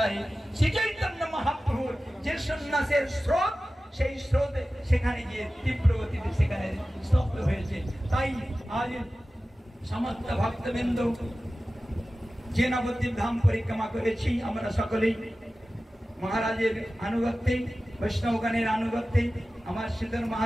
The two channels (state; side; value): normal; both; correlation 0.95